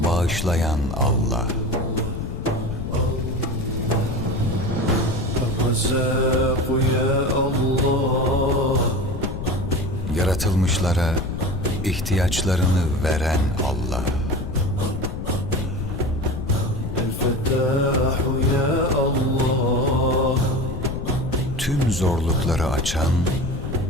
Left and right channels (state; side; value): noise; left; rumble, 6 dB below the sound